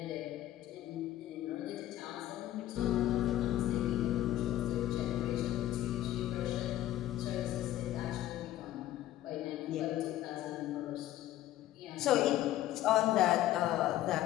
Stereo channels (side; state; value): right; quieter; 13.7 dB